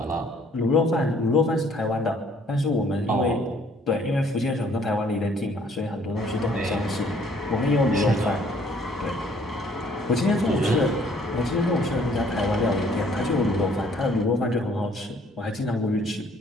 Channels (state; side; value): normal; both; correlation 0.61